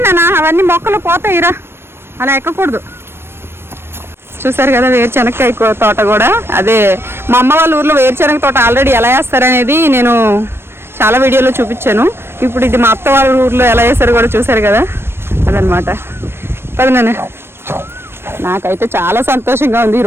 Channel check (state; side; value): late; left; 0.12 ms